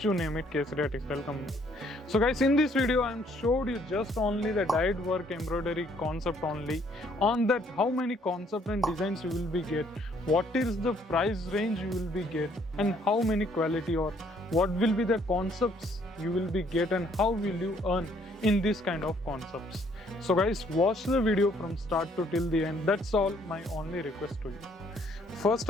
you name it, Kesaria Textile Company. So guys, in this video I am showed you just only the dyed work embroidery concept only. On that, how many concept and designs you will be get, what is the price range you will be get, and how many quality or what will be the concepts you will be get, and how will you earn in this kind of concepts. So guys, watch the video from start to till the end. That's all my only request to you. First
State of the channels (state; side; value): normal; both; correlation 0.65